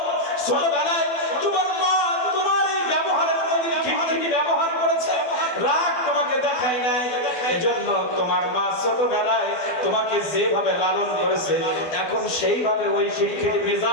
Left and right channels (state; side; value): late; right; 12 ms